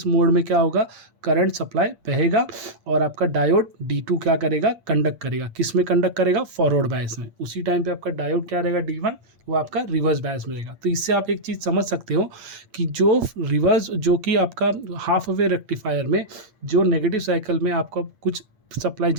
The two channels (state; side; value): late; left; 8.7 ms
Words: मोड में क्या होगा, करंट सप्लाई बहेगा और आपका डायोड D2 क्या करेगा, कंडक्ट करेगा। किस में कंडक्ट करेगा, फॉरवर्ड बायस में। उसी टाइम पे आपका डायोड क्या रहेगा, D1, वो आपका रिवर्स बायस में रहेगा। तो इससे आप एक चीज़ समझ सकते हो कि जो कि आपका हाफ वे रेक्टिफायर में जो नेगेटिव साइकिल में आपका कुछ सप्लाई